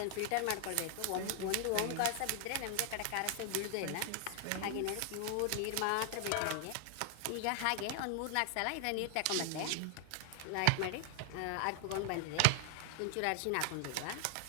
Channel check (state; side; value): different; both; correlation 0.00